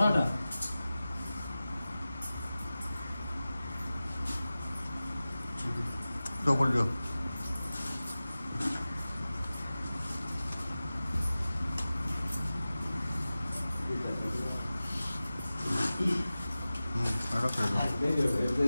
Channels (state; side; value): inverted; both; correlation -0.96